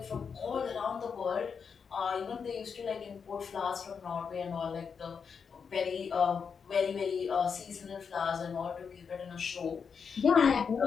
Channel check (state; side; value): quieter; right; 6.2 dB